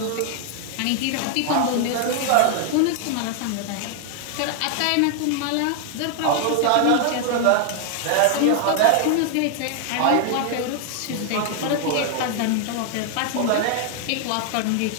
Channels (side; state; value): both; different; correlation 0.00